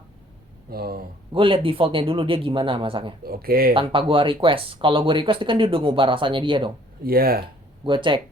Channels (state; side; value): normal; both; correlation 0.58